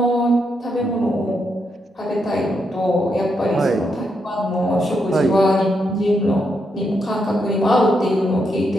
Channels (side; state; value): both; normal; correlation 0.81